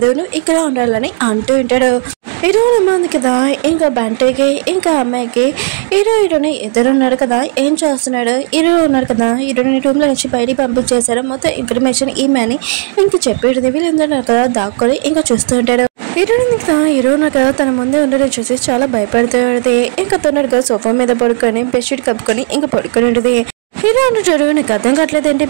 నువ్వు ఇక్కడ ఉండాలని అంటూ ఉంటాడు హీరోయిన్ ఉంది కదా ఇంకా బంటికి ఇంకా అమ్మాయికి హీరోని ఇద్దరున్నారు కదా ఏం చేస్తున్నాడు హీరో ఉన్నారు కదా హీరోని రూమ్ లో నుంచి బయటికి పంపించేశారు మొత్తం ఇన్ఫర్మేషన్ ఈమెని ఇంక చెప్పేది వీళ్ళందరూ కదా దాక్కొని ఇంకా చూస్తూ ఉంటాడు హీరోయిన్ కదా హీరో కదా తన ముందే ఉండడం చూసి చాలా భయపడుతూ ఉంటుంది ఇంకా తొందరగా సోఫా మీద పడుకొని బెడ్షీట్ కప్పుకొని ఇంకా పడుకొని ఉంటుంది హీరో అంటాడు నీకు అర్థం కావట్లేదేంటి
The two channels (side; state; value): left; silent; 67 dB below the other